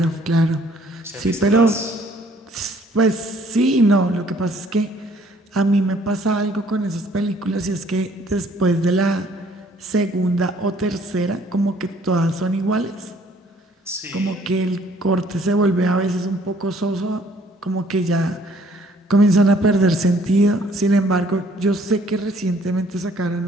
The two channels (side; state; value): both; normal; correlation 0.60